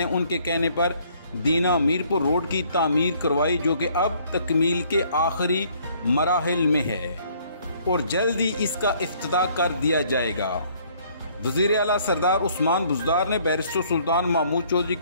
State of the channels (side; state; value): both; inverted; correlation -0.62